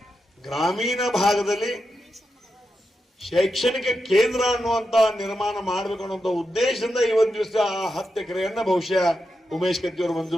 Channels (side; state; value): both; normal; correlation 0.87